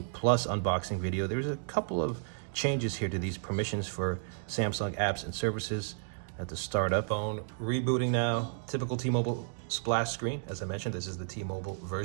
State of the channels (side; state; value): left; silent; digital silence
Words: Plus unboxing video, there's a couple of changes here to these permissions for Samsung apps and services. At the startup phone, rebooting now, typical T-Mobile splash screen. As I mentioned, this is the T-Mobile